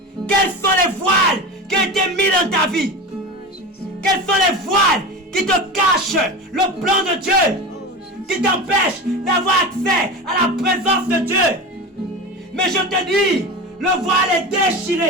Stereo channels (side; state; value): both; normal; correlation 0.27